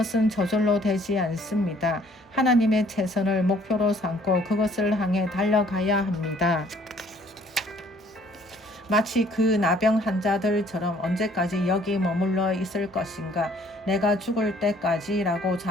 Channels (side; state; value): both; normal; correlation 0.59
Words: 저절로 되지 않습니다. 하나님의 최선을 목표로 삼고 그것을 향해 달려가야 합니다. 마치 그 나병 환자들처럼 언제까지 여기 머물러 있을 것인가? 내가 죽을 때까지라고